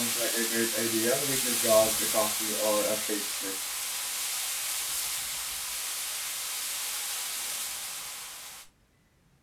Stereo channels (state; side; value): identical; both; correlation 1.00